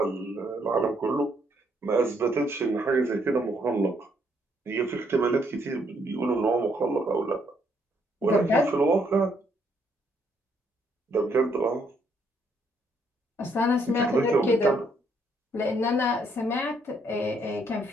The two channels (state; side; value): normal; both; correlation 0.71